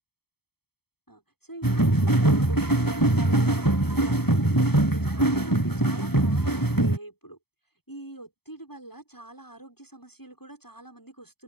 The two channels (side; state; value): right; late; 0.96 ms